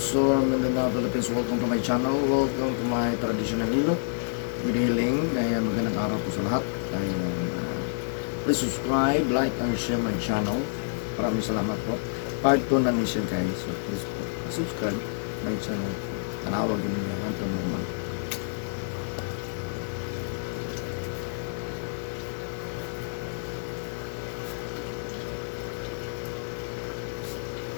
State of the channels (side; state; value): right; silent; 59 dB below the other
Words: Mindanao, Philippines. Welcome to my channel. Welcome to my traditional Hilot with healing. Ayan, magandang araw po sa lahat. Ayan, please subscribe, like, and share my channel. Maraming salamat po. Part 2 na niya guys. So please po, subscribe my channel. Tanawag din niya. Hanto naman.